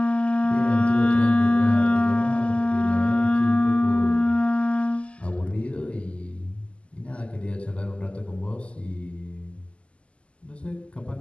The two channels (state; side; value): late; right; 0.056 ms